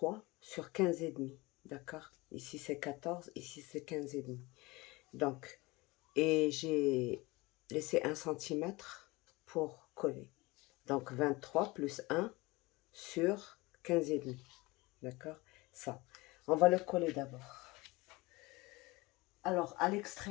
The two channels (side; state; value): right; quieter; 22.7 dB